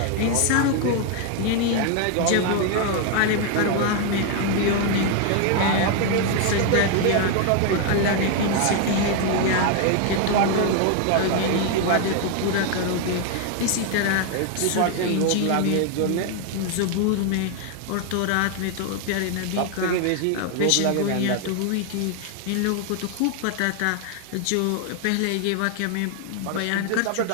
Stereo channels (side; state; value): both; different; correlation 0.00